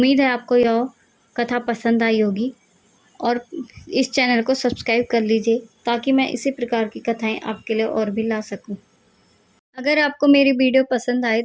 है आपको यह कथा पसंद आई होगी, और इस चैनल को सब्सक्राइब कर लीजिए ताकि मैं इसी प्रकार की कथाएं आपके लिए और भी ला सकूं। अगर आपको मेरी वीडियो पसंद आए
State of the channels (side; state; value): both; identical; correlation 1.00